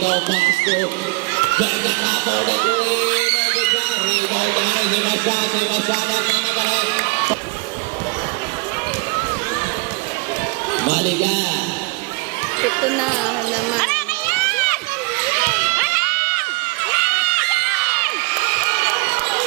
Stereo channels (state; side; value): quieter; left; 26.7 dB